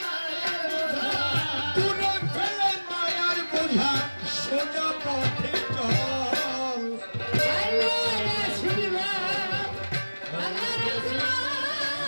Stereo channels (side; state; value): both; inverted; correlation -1.00